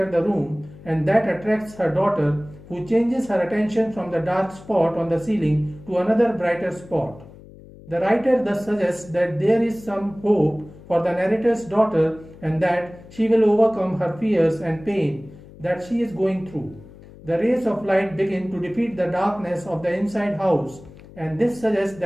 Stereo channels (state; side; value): noise; left; hum, 20 dB below the sound